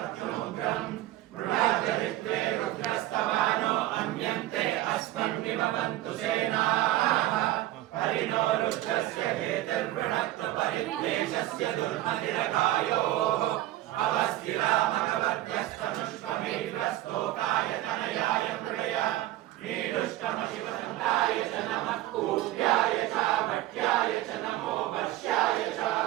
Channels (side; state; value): left; quieter; 15.4 dB